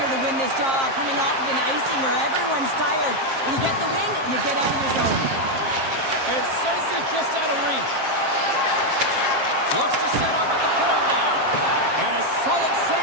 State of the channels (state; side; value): late; left; 7.5 ms